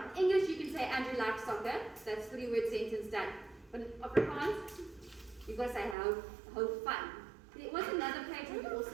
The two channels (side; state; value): left; drops out; at 6.0 s